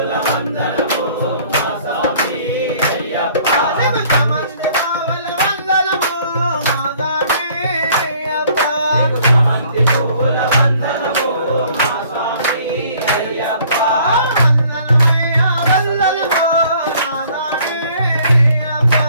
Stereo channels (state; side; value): inverted; both; correlation -0.57